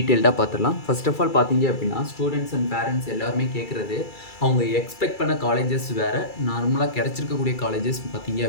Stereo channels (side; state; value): right; late; 2.3 ms